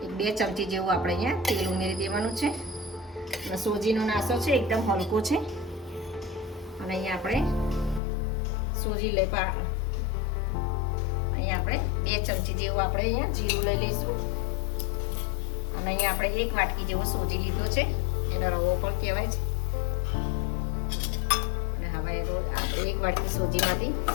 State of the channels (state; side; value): drops out; right; at 8.0 s